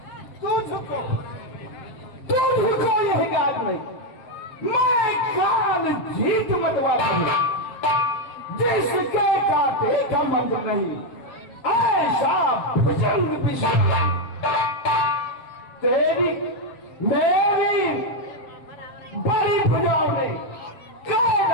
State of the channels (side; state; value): right; late; 7.5 ms